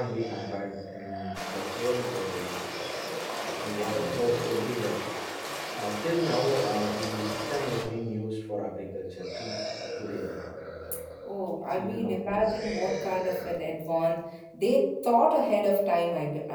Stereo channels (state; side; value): identical; both; correlation 1.00